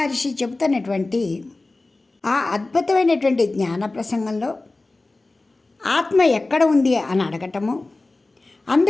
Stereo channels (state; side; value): quieter; right; 3.2 dB